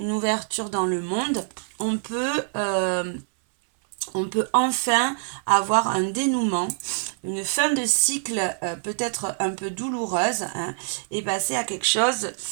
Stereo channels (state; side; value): silent; left; 62 dB below the other